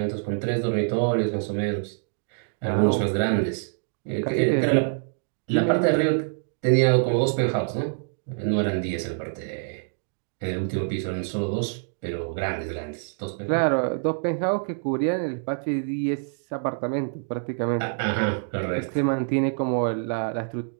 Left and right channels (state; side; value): silent; left; digital silence